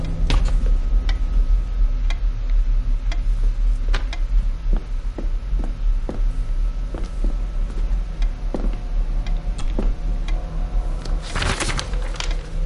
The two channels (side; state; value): both; identical; correlation 1.00